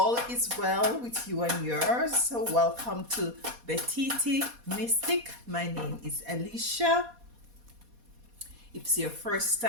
is well with you and yours. So welcome to Bititi Mystic. My name is Alicia. If it's your first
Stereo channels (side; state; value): left; late; 4.2 ms